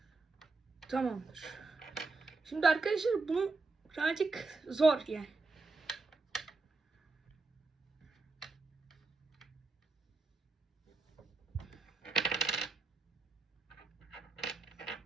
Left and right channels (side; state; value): left; quieter; 3.7 dB